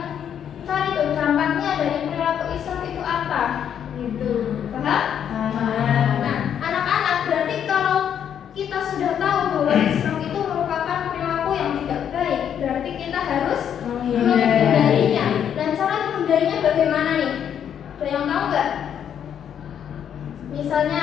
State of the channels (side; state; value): right; quieter; 8.9 dB